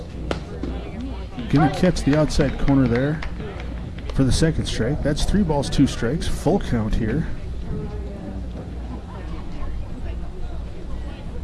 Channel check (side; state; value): both; identical; correlation 1.00